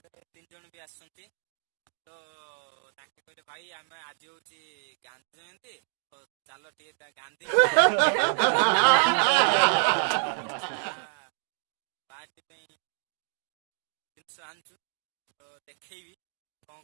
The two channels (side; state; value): left; silent; digital silence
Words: 3 जन भी आसछंती। तो ताके कहले भाई आम आज हूँ गांधी जयंती और चलो टे गांधी किछटा पार्टी जिनस आनचु। तो देखी